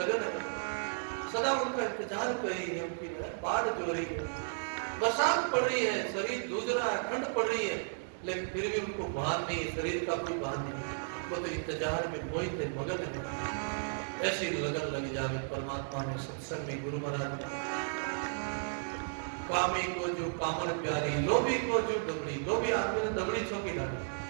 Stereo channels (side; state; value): left; silent; digital silence